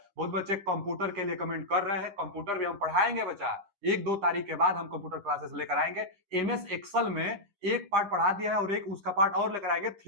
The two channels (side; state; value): left; late; 10 ms